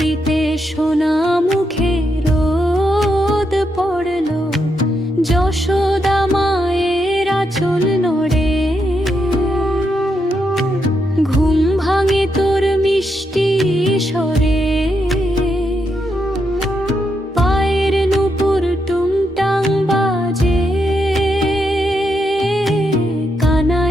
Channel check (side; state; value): both; normal; correlation 0.81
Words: সোনা মুখে রোদ পড়লো, যশোদা মায়ের আঁচল নড়ে। ঘুম ভাঙে তোর মিষ্টি স্বরে, পায়ের নূপুর টুংটাং বাজে।